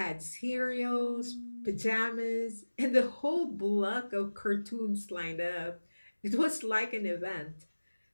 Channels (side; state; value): both; inverted; correlation -1.00